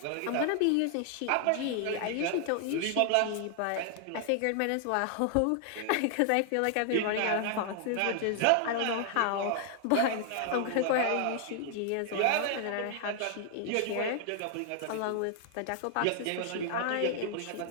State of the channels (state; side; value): different; both; correlation 0.00